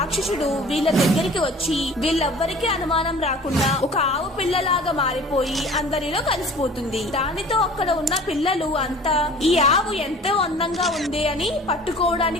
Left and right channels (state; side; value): normal; both; correlation 0.45